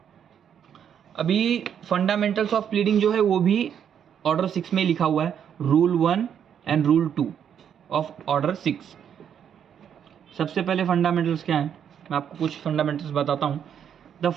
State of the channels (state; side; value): quieter; left; 8.6 dB